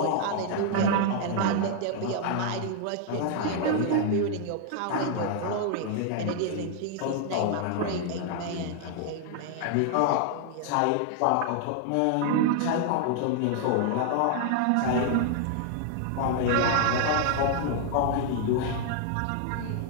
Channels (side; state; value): both; different; correlation 0.00